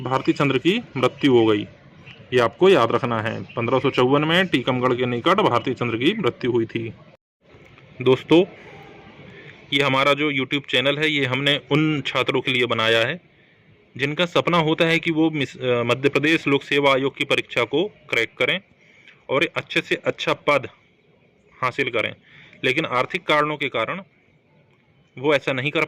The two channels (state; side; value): identical; both; correlation 1.00